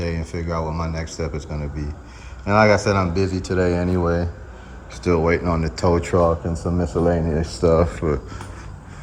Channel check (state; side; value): identical; both; correlation 1.00